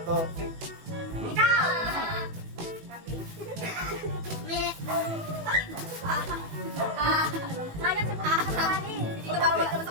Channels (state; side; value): late; left; 18 ms